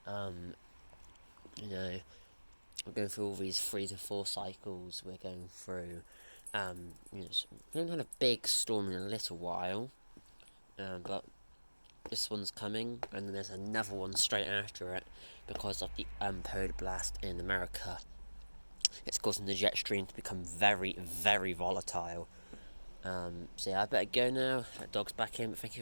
We're going through all these 3 to 4 cycles. We're going through, we haven't had a big storm in a little while, but this one's coming, and then there's another one straight after it because of the polar blast in America. It's causing the jet stream to become very, very volatile. So yeah, I better go now. That dog's back in. But thank you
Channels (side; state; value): both; inverted; correlation -1.00